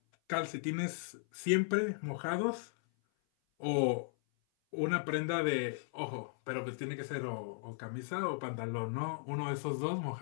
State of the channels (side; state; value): right; silent; 53 dB below the other